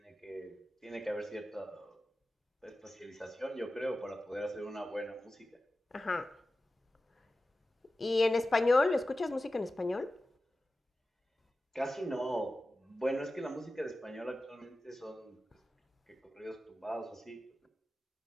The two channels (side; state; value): both; normal; correlation 0.94